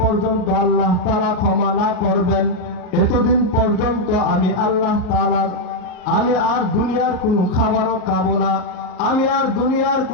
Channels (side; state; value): right; late; 38 ms